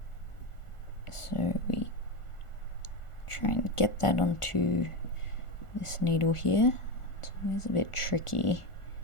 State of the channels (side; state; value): right; late; 1.4 ms